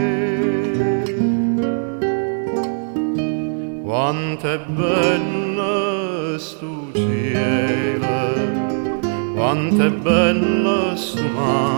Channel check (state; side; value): silent; left; digital silence